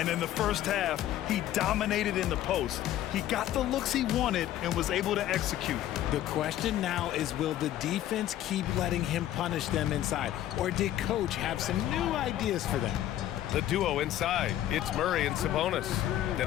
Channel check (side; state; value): right; quieter; 12.7 dB